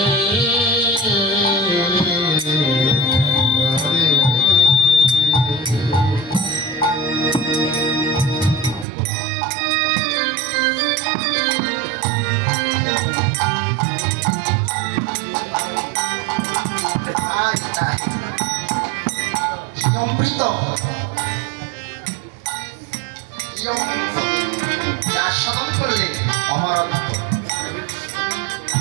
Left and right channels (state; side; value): drops out; left; at 8.8 s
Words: অমৃত যার সাধন করলে অমরত্ব,